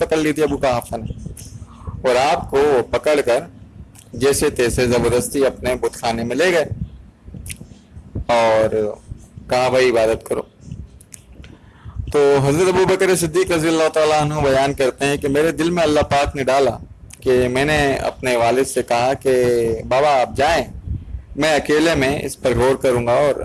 لی تھی ابو قحافہ نے، اور آپ کو پکڑ کر جیسے تیسے زبردستی اپنے بت خانے میں لے گئے اور کہا بھائی عبادت کرو۔ تو حضرت ابو بکر صدیق رضی اللہ تعالیٰ عنہ بیان کرتے ہیں کہ میرے دل میں اللہ پاک نے ڈالا کہ میں نے اپنے والد سے کہا کہ بابا آپ جائیں، میں اکیلے میں اس پر غور کروں گا اور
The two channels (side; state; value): both; identical; correlation 1.00